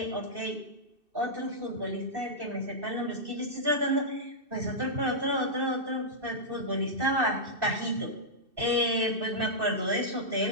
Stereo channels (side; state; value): left; late; 2.6 ms